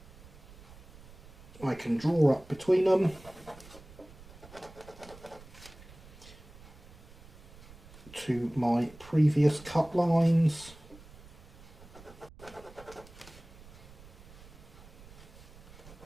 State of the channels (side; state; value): right; noise; rumble, 19 dB below the sound